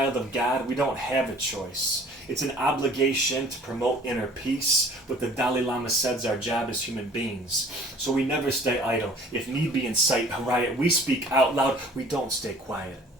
of God, we don't have a choice. It's an obligation to promote inner peace. What the Dalai Lama says our job as human beings. So we never stay idle. If need be, incite a riot. We speak out loud. We don't stay quiet.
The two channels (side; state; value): both; normal; correlation 0.50